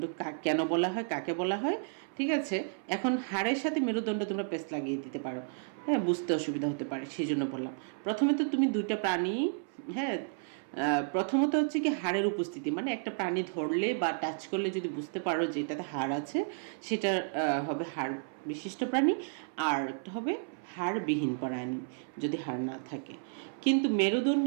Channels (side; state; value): left; silent; 56 dB below the other